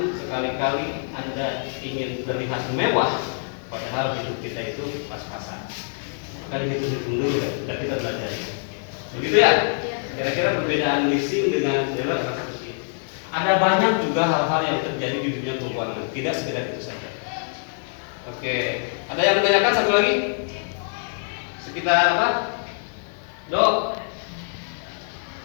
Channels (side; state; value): right; silent; 62 dB below the other